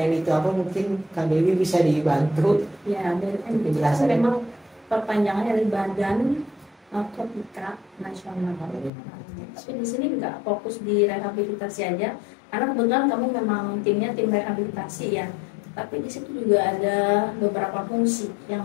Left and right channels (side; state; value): right; drops out; at 8.9 s